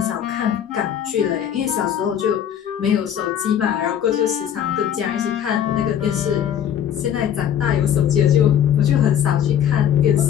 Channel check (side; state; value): right; quieter; 9.5 dB